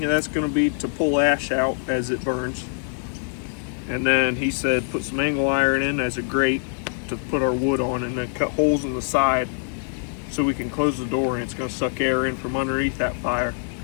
that's going to be to pull ash out as it burns. And then he said put some angle iron in as a grate to put our wood on, and then cut holes in the side so we can close the door, and it's going to suck air in from underneath that fire,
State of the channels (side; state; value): right; silent; 63 dB below the other